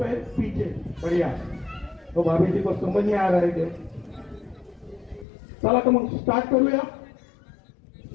पीछे. बढ़िया. तो भाभी जी को समझ में आ रहा है. चला तर मग स्टार्ट करूया.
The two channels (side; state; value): right; drops out; at 5.2 s